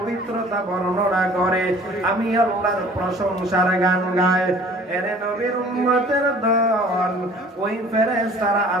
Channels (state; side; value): normal; both; correlation 0.50